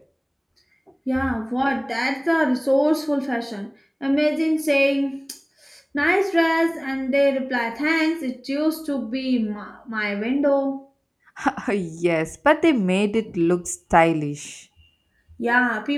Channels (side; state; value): both; identical; correlation 1.00